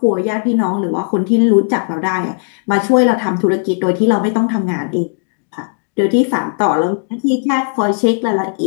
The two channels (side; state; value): right; silent; digital silence